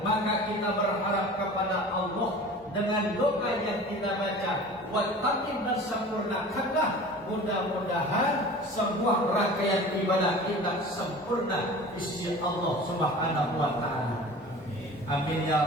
Maka kita berharap kepada Allah dengan doa yang kita baca, wal tatim, dan sempurnakanlah. Mudah-mudahan sebuah rangkaian ibadah kita sempurna di sisi Allah Subhanahu wa taala. Amin ya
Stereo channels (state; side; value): normal; both; correlation 0.40